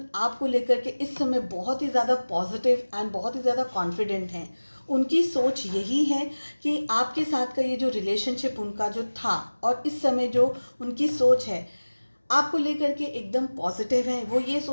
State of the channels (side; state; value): both; inverted; correlation -1.00